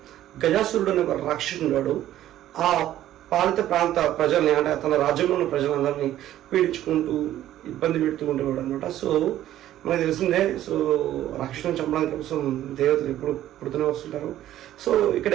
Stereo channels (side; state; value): left; quieter; 12.9 dB